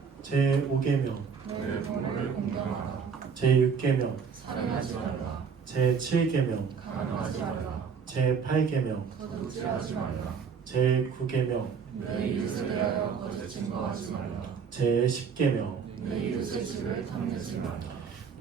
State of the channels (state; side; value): quieter; left; 6.2 dB